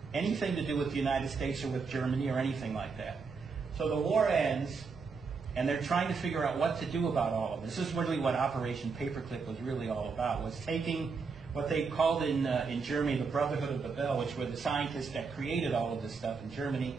anything to do with the United States or with Germany or anything like that. So the war ends, and they're trying to figure out what to do about all of this. This is really what Operation Paperclip was really all about, was taking what they called in Germany the Brotherhood of the Bell, which were the scientists that created all of this stuff in Germany,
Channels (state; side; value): quieter; left; 5.0 dB